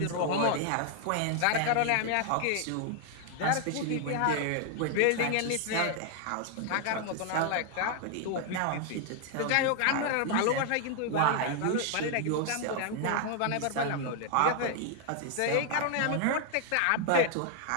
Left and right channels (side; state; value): both; different; correlation 0.00